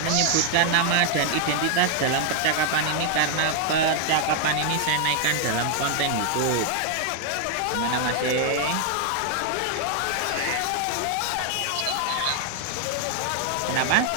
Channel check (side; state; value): both; different; correlation 0.00